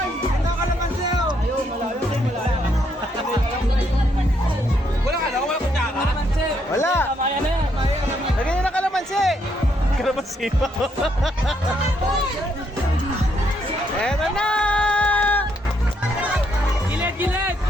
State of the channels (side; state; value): both; normal; correlation 0.74